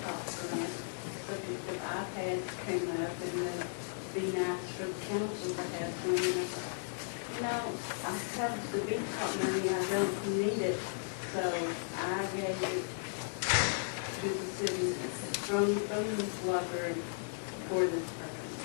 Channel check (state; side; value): silent; right; digital silence